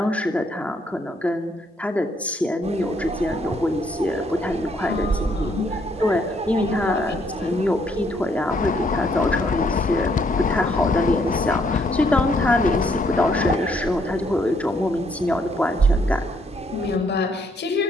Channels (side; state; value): both; normal; correlation 0.70